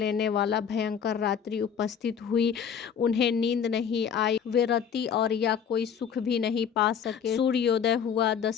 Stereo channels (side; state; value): right; quieter; 7.6 dB